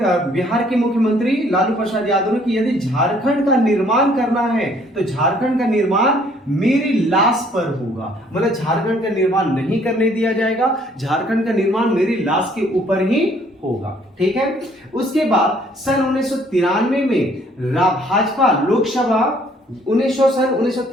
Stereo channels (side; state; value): both; normal; correlation 0.62